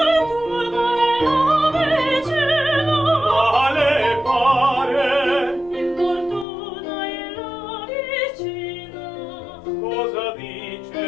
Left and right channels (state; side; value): drops out; right; at 6.5 s